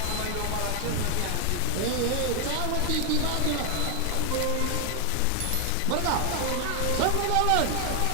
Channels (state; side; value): different; both; correlation 0.00